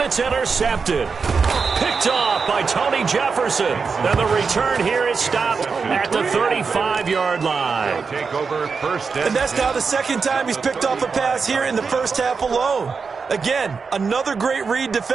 intercepted. Picked off by Tony Jefferson. And the return here is stopped at the 35-yard line. Take over 1st And that's now the 2nd time he's picked off a pass here in the 1st half alone. Again, another great read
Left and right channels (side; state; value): left; quieter; 5.2 dB